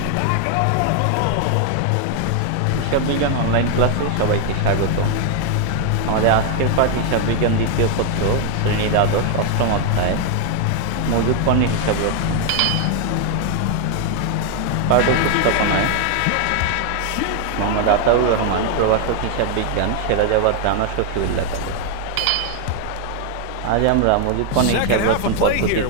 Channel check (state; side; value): different; both; correlation 0.00